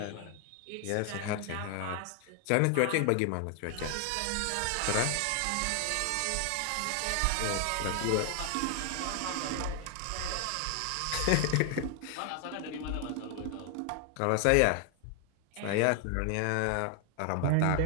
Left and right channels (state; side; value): different; both; correlation 0.00